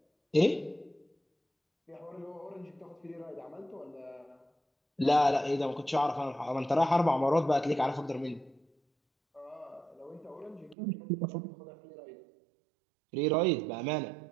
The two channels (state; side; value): drops out; left; at 10.8 s